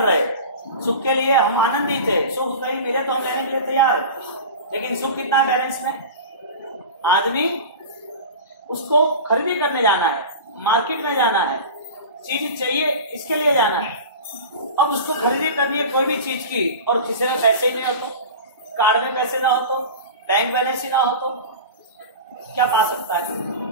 रहे, सुख के लिए हम आनंदित है, सुख कहीं मिले तो हम लेने के लिए तैयार है, लेकिन सुख कितना बैलेंस में? आदमी उसको खरीदी करने जाना है, मार्केट में जाना है, चीज चाहिए इसके लिए जाना है। अब उसको खरीदी करनी है कोई भी चीज की, और किसी में पैसे ही नहीं हो तो, कार्ड में पैसे ना हो तो, बैंक बैलेंस ही ना हो तो क्या पा सकता है?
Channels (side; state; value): both; inverted; correlation -0.32